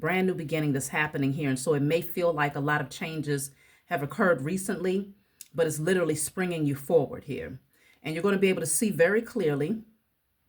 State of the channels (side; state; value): both; identical; correlation 1.00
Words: new beginning that's happening here. And so it may feel like a lot of changes have occurred recently, but it's literally springing you forward here. And you're going to be able to see very clearly,